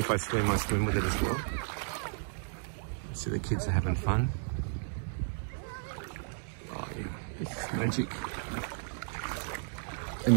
I swim with it as well. So the kids are having fun. Oh yeah, this is magic.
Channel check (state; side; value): silent; left; digital silence